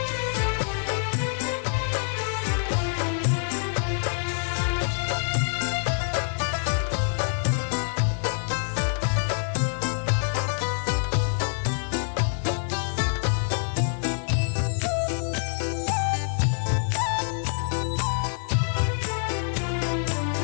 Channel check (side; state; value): right; silent; 61 dB below the other